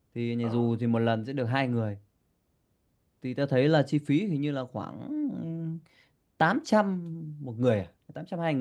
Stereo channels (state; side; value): identical; both; correlation 1.00